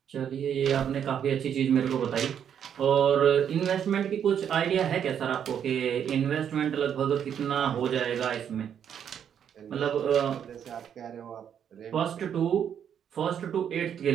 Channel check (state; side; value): quieter; left; 8.7 dB